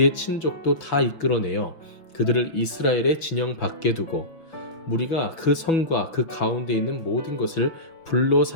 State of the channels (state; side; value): late; right; 6.1 ms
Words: 친족도 다 이끌어내어 그들을 이스라엘의 진영 밖에 두고 무리가 그 성과 그 가운데 있는 모든 것을 불로